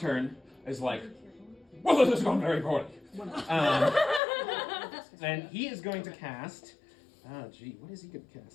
is like, well, this has gone very poorly. And he is going to cast. What is he going to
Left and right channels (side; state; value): right; drops out; at 4.2 s